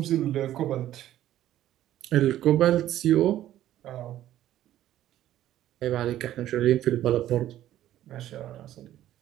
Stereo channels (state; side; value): quieter; left; 12.9 dB